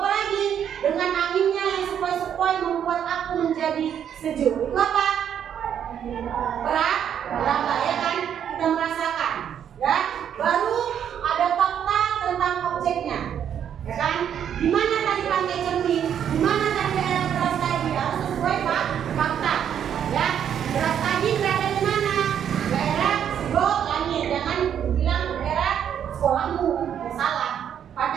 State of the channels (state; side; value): quieter; left; 9.0 dB